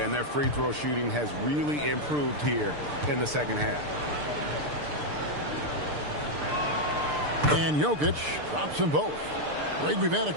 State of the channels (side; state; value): left; late; 6.7 ms